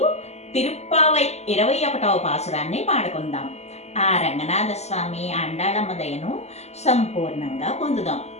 తిరుప్పావై 21వ పాసురాన్ని పాడుకుందాం. ఆ రంగనాథ స్వామి ఆండాళమ్మ దయను సంపూర్ణంగా పొందుదాం.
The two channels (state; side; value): late; right; 0.32 ms